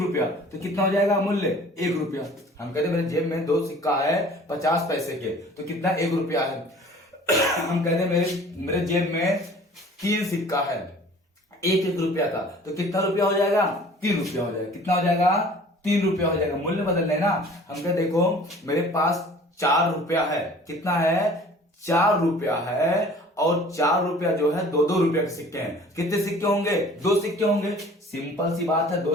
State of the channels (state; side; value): normal; both; correlation 0.48